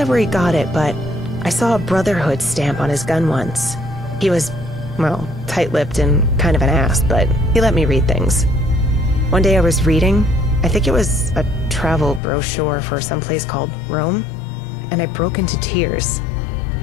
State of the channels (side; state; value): right; drops out; at 12.2 s